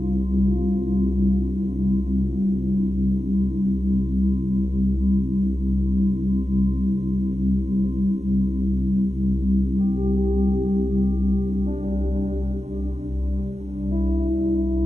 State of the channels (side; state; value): left; late; 0.33 ms